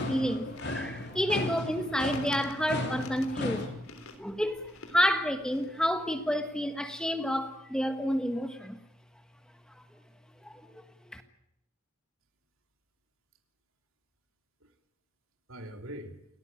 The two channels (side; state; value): both; normal; correlation 0.81